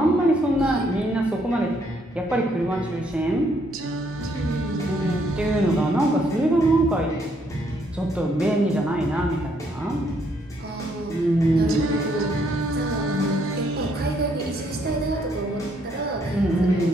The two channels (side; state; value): both; normal; correlation 0.71